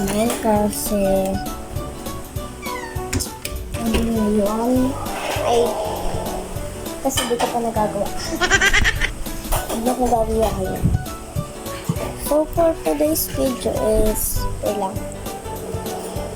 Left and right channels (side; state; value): both; identical; correlation 1.00